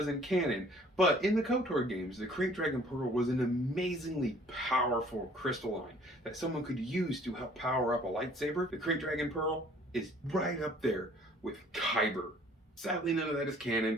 in canon, but in the KOTOR games, the Krayt Dragon Pearl was an amazingly powerful crystalline that someone could use to help power up a lightsaber. The Krayt Dragon Pearl is right up there with Kyber Sadly, none of that is canon,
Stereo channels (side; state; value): both; normal; correlation 0.55